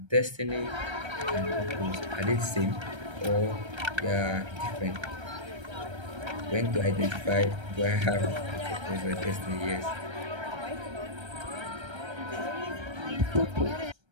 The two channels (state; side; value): late; left; 1.3 ms